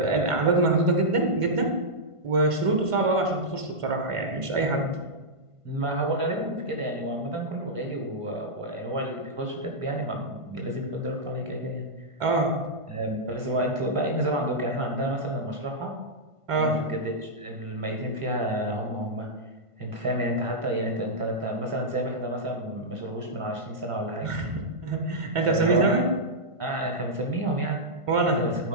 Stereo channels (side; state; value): left; late; 1.5 ms